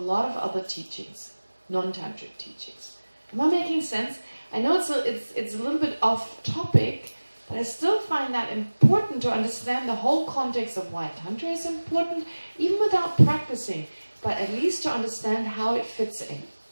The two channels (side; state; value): both; inverted; correlation -1.00